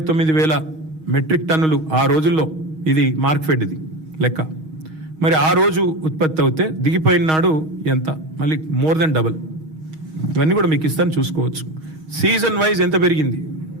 మెట్రిక్ టన్నులు ఆ రోజుల్లో, ఇది మార్క్ఫెడ్ ఇది లెక్క. మరి ఆ రోజు ఉత్పత్తి అవుతే దిగిపోయిన నాడు ఎంత? మళ్ళీ మోర్ దెన్ డబల్. ఇవన్నీ కూడా మీకు ఇస్తాను, చూసుకోవచ్చు. సీజన్ వైజ్ ఎంత పెరిగింది,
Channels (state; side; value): late; left; 6.3 ms